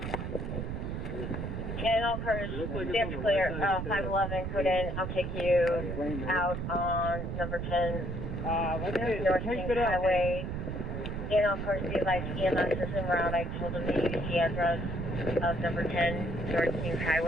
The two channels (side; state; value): right; noise; rumble, 4 dB below the sound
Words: Channel cars, that's clear. 511, put in. I'll take you out on number 10, North Kings Highway. Channel cars, be advised, EMS is en route. I told them to use the address of number 10, North Kings